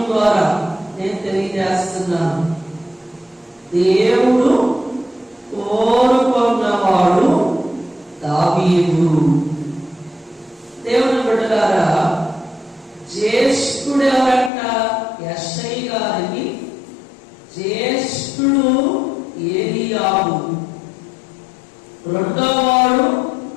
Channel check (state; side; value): drops out; right; at 14.5 s